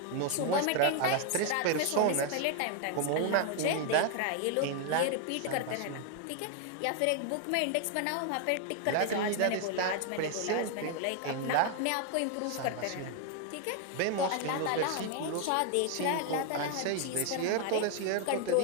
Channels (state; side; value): different; both; correlation 0.00